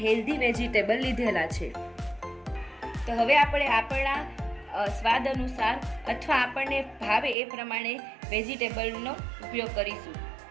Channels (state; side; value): drops out; left; at 7.4 s